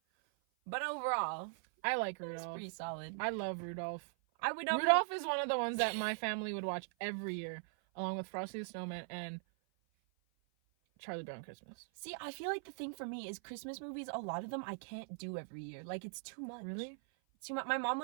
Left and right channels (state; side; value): silent; left; 51 dB below the other